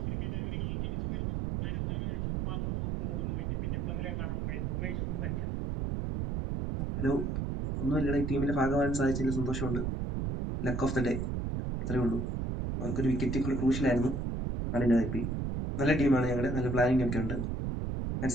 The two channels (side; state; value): right; noise; rumble, 1 dB below the sound